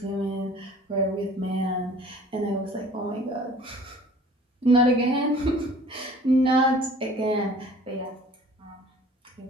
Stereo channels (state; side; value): normal; both; correlation 0.49